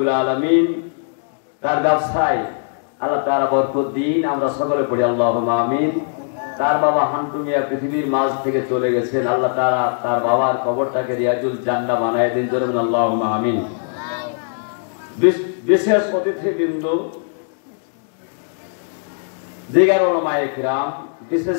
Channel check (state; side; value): silent; right; digital silence